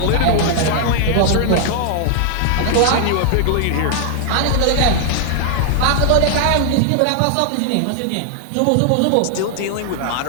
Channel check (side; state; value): both; different; correlation 0.00